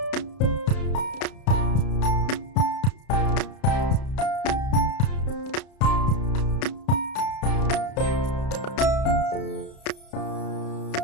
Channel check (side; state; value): right; late; 32 ms